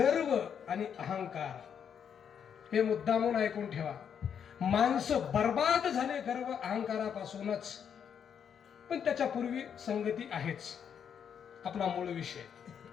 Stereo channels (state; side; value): quieter; right; 7.9 dB